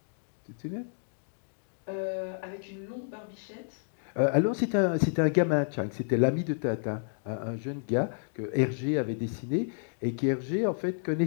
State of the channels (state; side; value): silent; right; digital silence